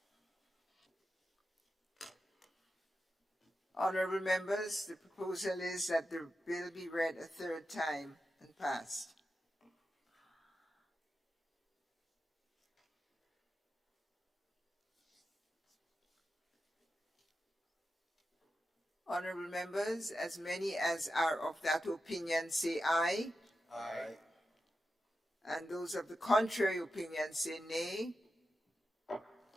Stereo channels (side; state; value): both; normal; correlation 0.90